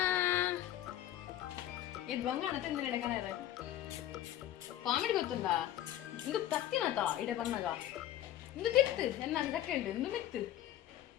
ಇದು ಬಂಗಾಣ ತಿಂದ್ರೆ ಎಡಕನ ಕಾಮಿಡಿ ಗೊತ್ತುಂಡ ಇಂದು ತತ್ತಿನತ ಇಡೆ ಬಂದಾಗ ಇಂದು ತಿತ್ತು ಎನ್ನ ಸೆಕೆಂಡ್ ಇಂದು ಮಿತ್ತು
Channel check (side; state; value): right; quieter; 12.9 dB